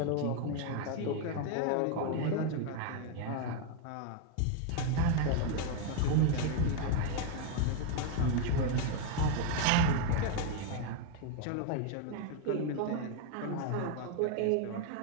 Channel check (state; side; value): different; both; correlation 0.00